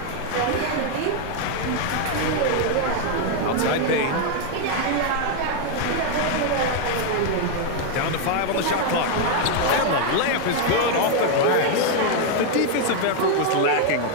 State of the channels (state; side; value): different; both; correlation 0.01